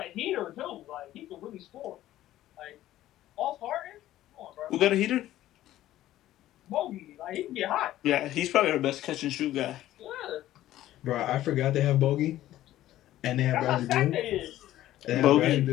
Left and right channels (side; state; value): right; quieter; 14.1 dB